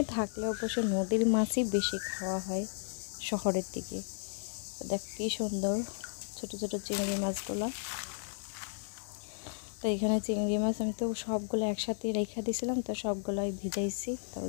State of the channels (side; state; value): right; silent; digital silence